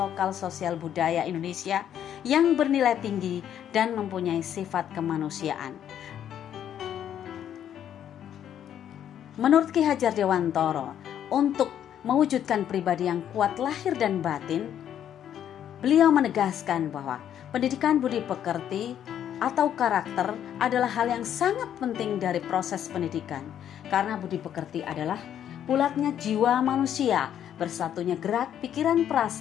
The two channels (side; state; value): right; quieter; 10.0 dB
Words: sosial budaya Indonesia yang bernilai tinggi dan mempunyai sifat kemanusiaan. Menurut Ki Hajar Dewantara, untuk mewujudkan pribadi yang kuat lahir dan batin, beliau menegaskan bahwa pendidikan budi pekerti atau karakter adalah hal yang sangat penting dari proses pendidikan, karena budi pekerti adalah bulatnya jiwa manusia, bersatunya gerak, pikiran,